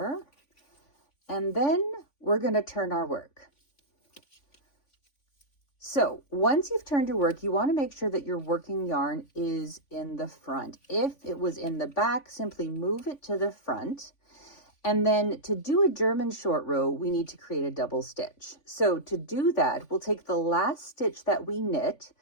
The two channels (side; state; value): right; late; 3.5 ms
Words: and then we're going to turn our work. So once you've turned your work, you want to make sure that your working yarn is in the front. If it was in the back, simply move it to the front. And then to do a German short row, we need to create a double stitch. So to do that, we'll take the last stitch that we knit